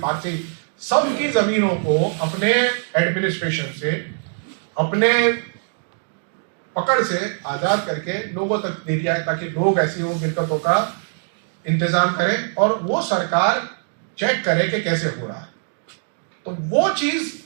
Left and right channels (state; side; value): silent; left; digital silence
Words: पारसी सबकी जमीनों को अपने एडमिनिस्ट्रेशन से, अपने पकड़ से आजाद करके लोगों तक दे दिया है, ताकि लोग ऐसी वो मिल्कतों का इंतजाम करें और वो सरकार चेक करे कि कैसे हो रहा है। तो वो चीज